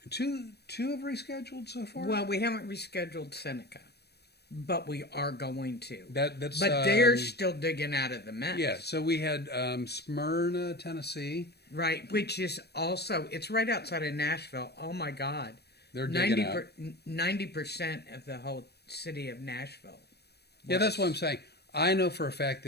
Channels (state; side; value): late; right; 0.47 ms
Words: two have rescheduled so far? Well, we haven't rescheduled Seneca, but we are going to. That's But they're still digging out of the mess. yeah. So we had Smyrna, Tennessee. Right, which is also, it's right outside of Nashville. Oh my God. They're digging out. 90% of the whole city of Nashville. Yeah, that's what I'm was. saying. I know for a fact